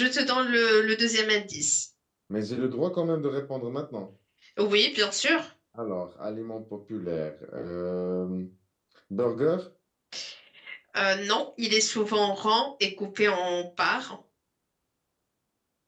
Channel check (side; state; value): both; identical; correlation 1.00